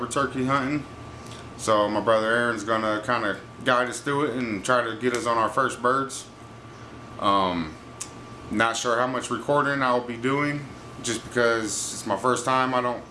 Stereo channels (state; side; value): identical; both; correlation 1.00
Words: turkey hunting. So my brother Aaron's going to kind of guide us through it and try to get us on our first birds. Not sure how much recording I'll be doing, just because it's my first time. I don't